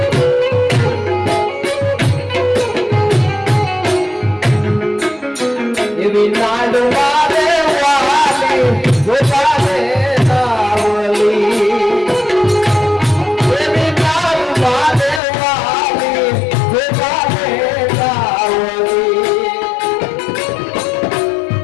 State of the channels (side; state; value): right; drops out; at 15.2 s